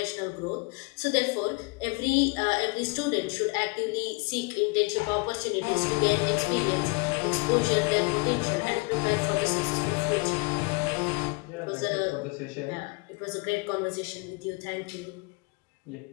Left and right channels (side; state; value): right; quieter; 29.1 dB